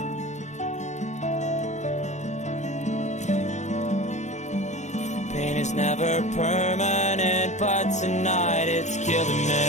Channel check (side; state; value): right; late; 0.34 ms